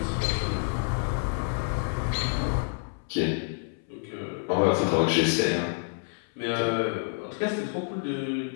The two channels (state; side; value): silent; right; 59 dB below the other